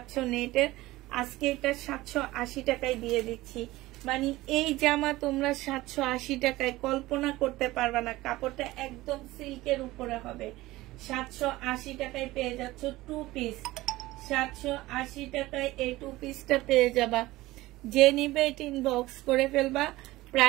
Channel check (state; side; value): quieter; left; 18.3 dB